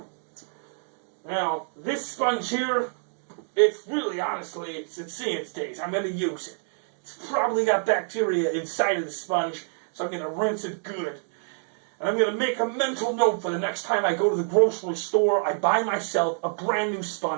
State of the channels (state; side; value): silent; left; 58 dB below the other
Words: Now, this sponge here, it's really, honestly, it's seeing its days. I'm going to use it. It's probably got bacteria inside of the sponge, so I'm going to rinse it good. And I'm going to make a mental note for the next time I go to the grocery store, I buy myself a brand new